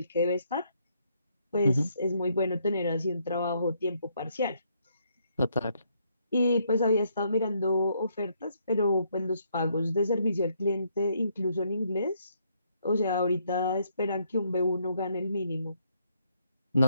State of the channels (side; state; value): both; inverted; correlation -0.72